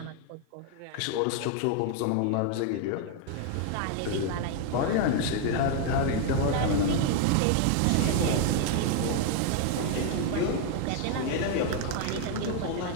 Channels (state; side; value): different; both; correlation 0.00